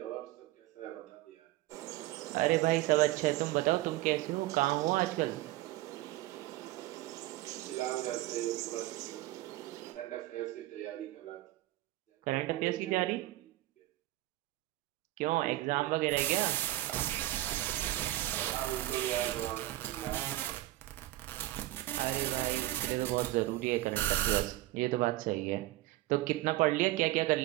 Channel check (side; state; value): left; quieter; 16.7 dB